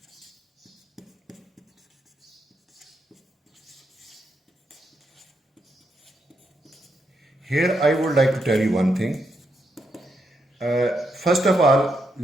Here I would like to tell you one thing. First of all,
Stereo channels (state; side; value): normal; both; correlation 0.81